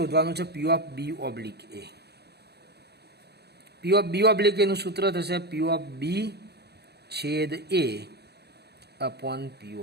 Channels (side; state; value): left; late; 0.48 ms